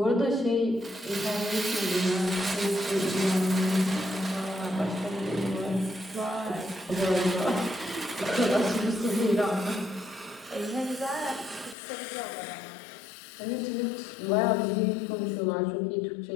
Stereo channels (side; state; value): right; drops out; at 11.8 s